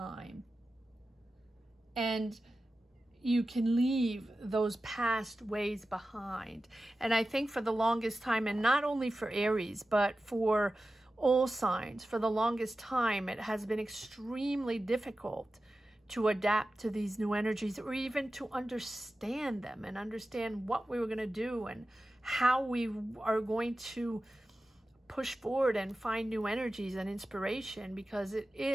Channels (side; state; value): both; normal; correlation 0.94